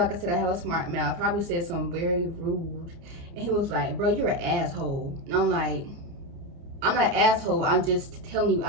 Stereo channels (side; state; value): left; late; 29 ms